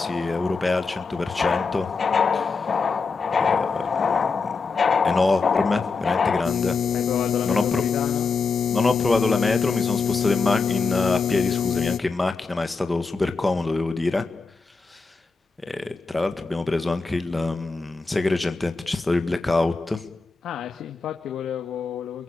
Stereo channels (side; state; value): right; quieter; 4.4 dB